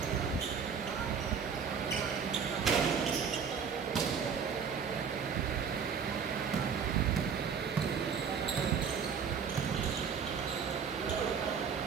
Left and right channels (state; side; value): quieter; left; 6.5 dB